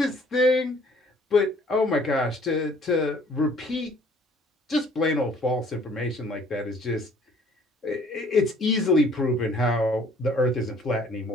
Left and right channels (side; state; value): both; normal; correlation 0.57